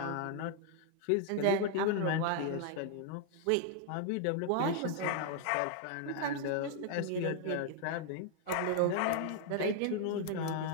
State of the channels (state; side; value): different; both; correlation 0.00